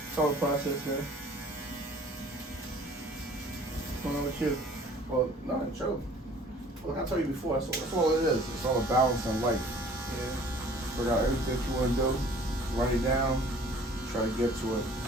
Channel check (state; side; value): normal; both; correlation 0.52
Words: all a process, man. What's going on with you? Well, no, chill. Look, I told you before, that's all it is. It's all a balance in life. Yeah. Figure out everything you want to do, write it down, try to get to it as